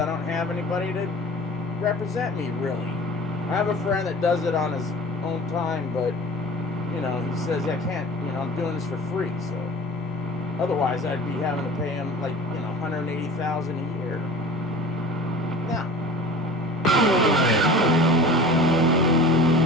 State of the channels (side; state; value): both; normal; correlation 0.40